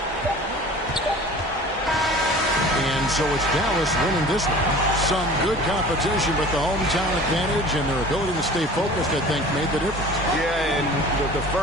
And so it's Dallas winning this one. Some good competition, but the hometown advantage and their ability to stay focused, I think, made the difference. Yeah, and the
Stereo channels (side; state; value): both; normal; correlation 0.43